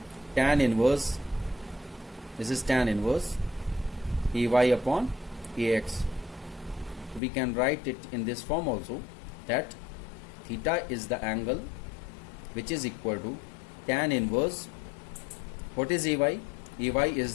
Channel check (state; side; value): drops out; right; at 7.2 s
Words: tan inverse, this is tan inverse ay upon ax. We can write it in this form also, that theta is the angle which is equal to tan inverse, what is ay? Ay is